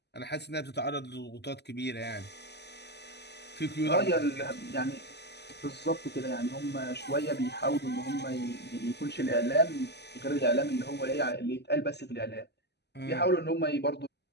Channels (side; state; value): right; late; 0.49 ms